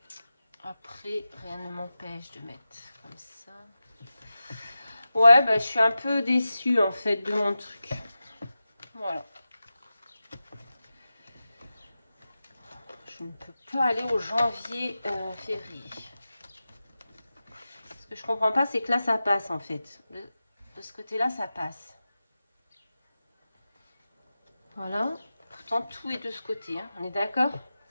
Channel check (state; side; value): inverted; both; correlation -0.93